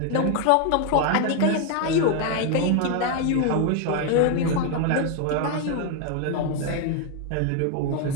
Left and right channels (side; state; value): both; different; correlation 0.01